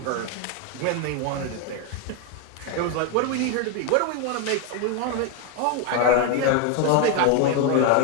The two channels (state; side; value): different; both; correlation 0.01